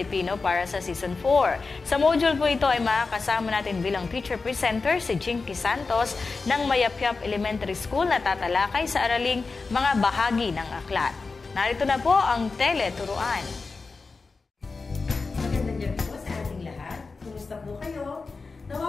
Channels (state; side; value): quieter; right; 4.2 dB